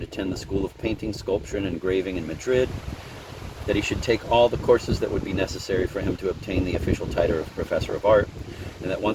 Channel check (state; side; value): identical; both; correlation 1.00